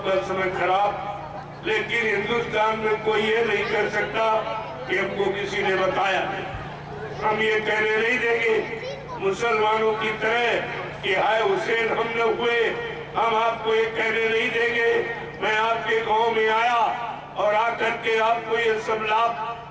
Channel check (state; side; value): identical; both; correlation 1.00